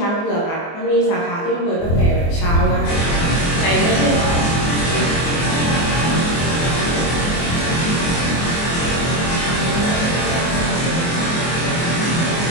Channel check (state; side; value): late; right; 24 ms